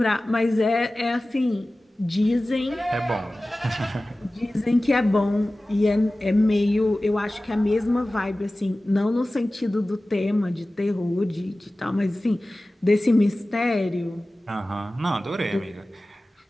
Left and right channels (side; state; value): both; normal; correlation 0.97